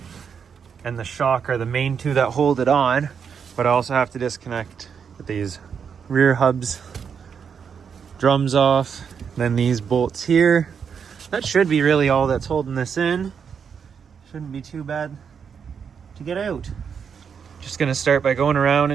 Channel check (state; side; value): quieter; left; 6.9 dB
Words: and the shock are the main two that hold it on, but I also have to disconnect these rear hubs, drums off, then these bolts here. That should be really all that's holding this in. Shouldn't be too bad to get out. Just gonna start by going around